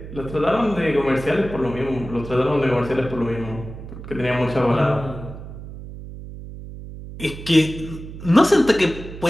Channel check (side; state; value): right; noise; hum, 12 dB below the sound